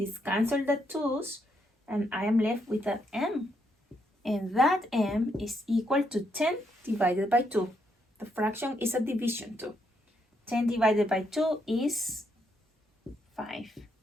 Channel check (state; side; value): normal; both; correlation 0.77